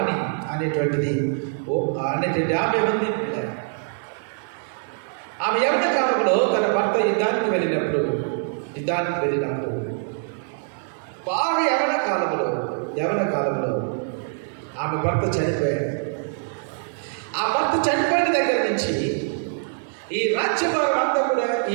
అనేటువంటిది ఆమె ఉంది. ఆమె యవ్వన కాలంలో తన భర్త యుద్ధానికి వెళ్ళినప్పుడు బాగా యవ్వన కాలంలో ఆమె భర్త చనిపోయాడు. ఆ భర్త చనిపోయిన దగ్గర నుంచి ఈ రాజ్యభారం అంతా కూడా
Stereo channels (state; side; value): silent; left; digital silence